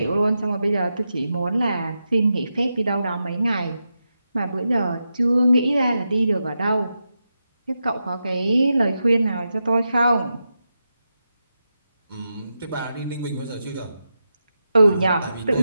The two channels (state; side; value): inverted; both; correlation -0.88